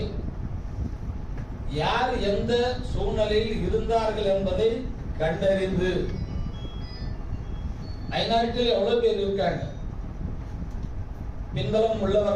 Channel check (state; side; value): identical; both; correlation 1.00